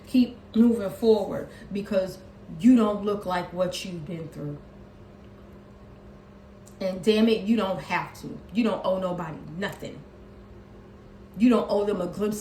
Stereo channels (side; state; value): both; identical; correlation 1.00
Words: Keep moving forward because you don't look like what you've been through. And damn it, you don't have to. You don't owe nobody nothing. You don't owe them a